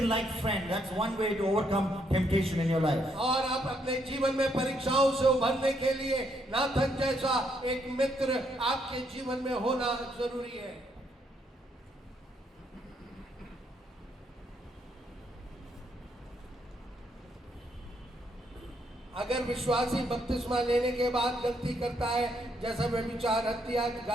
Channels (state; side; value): normal; both; correlation 0.74